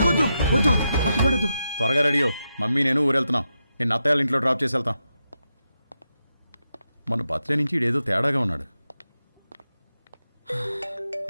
వద్దు, వద్దు, అరటిపండు వద్దు. త్వరగా రెడీయో, మమ్మీ నేను ఊరెళ్తున్నాం. నేను అత్తయ్య ఇంట్లో డ్రాప్ చేసి వెళ్తాం. మన బర్త్డే నుంచి ఇడేదో తేడాగా ఉన్నాడు.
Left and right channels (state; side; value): inverted; both; correlation -0.87